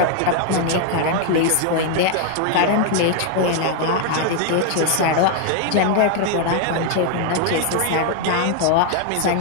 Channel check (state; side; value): different; both; correlation 0.00